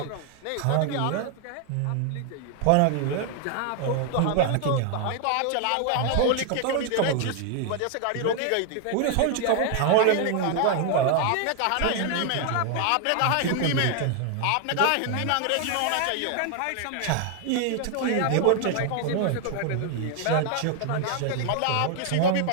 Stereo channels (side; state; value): both; different; correlation 0.00